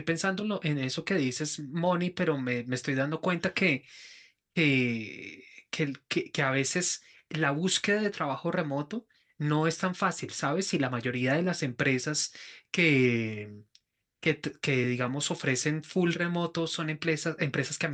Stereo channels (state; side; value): identical; both; correlation 1.00